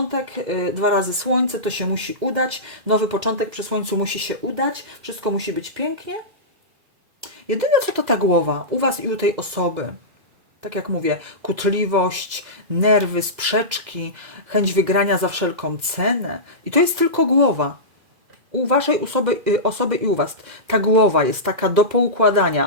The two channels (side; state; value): left; late; 2.0 ms